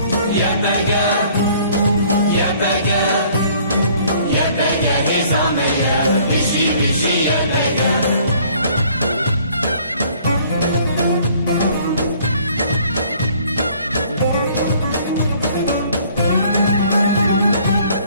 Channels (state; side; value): inverted; both; correlation -0.57